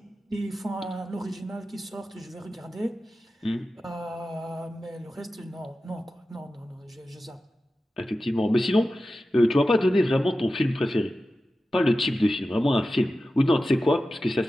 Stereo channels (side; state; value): both; normal; correlation 0.93